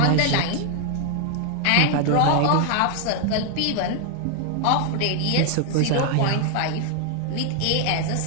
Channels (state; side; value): different; both; correlation 0.00